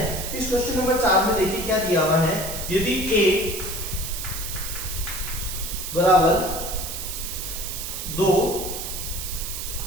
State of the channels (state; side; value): noise; right; hiss, 6 dB below the sound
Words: इस क्वेश्चन नंबर 4 में देखिए क्या दिया हुआ है। यदि a बराबर 2